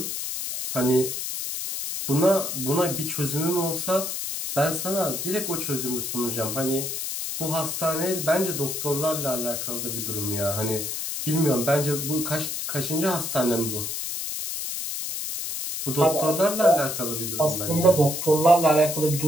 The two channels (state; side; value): noise; left; hiss, 4 dB below the sound